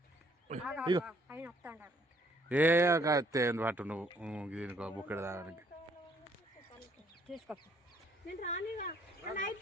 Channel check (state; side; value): normal; both; correlation 0.65